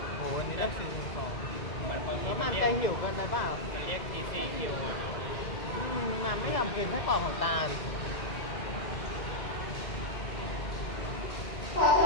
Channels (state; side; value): late; right; 2.0 ms